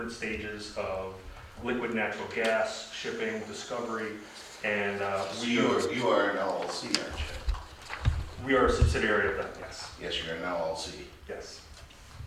stages of liquid natural gas, shipping, discovery, and You are an LLC, aren't you? we are a subsidiary of them, yes. Yes, you're an LLC. Yes.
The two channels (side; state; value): both; identical; correlation 1.00